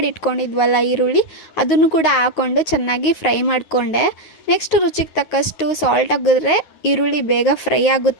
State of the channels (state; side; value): late; right; 9.3 ms